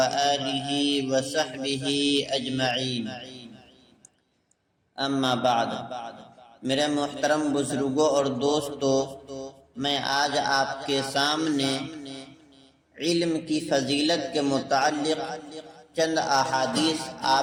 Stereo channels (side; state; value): both; identical; correlation 1.00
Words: وصحبه أجمعين اما بعد۔ میرے محترم بزرگوں اور دوستوں، میں آج آپ کے سامنے علم کی فضیلت کے متعلق چند احادیث